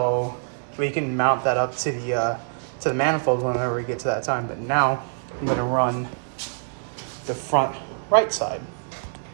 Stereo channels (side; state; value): left; silent; digital silence